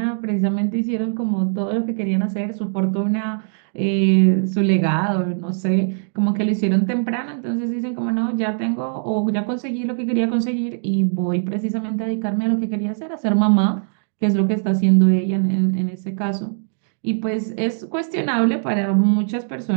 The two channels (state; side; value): silent; left; digital silence